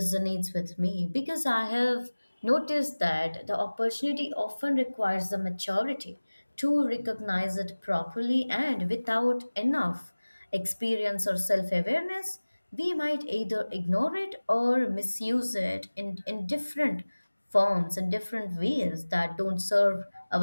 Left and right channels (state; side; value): inverted; both; correlation -1.00